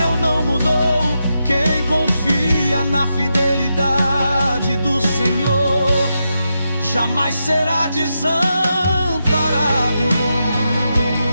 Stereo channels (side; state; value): both; inverted; correlation -0.86